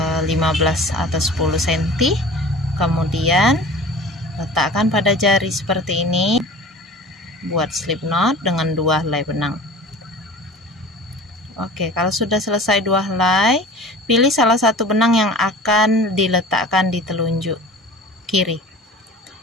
atau 10 cm. Kemudian letakkan pada jari seperti ini. Buat slip knot dengan dua helai benang. Oke, kalau sudah selesai dua helai, pilih salah satu benang yang akan diletakkan di telunjuk kiri.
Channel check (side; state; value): both; normal; correlation 0.40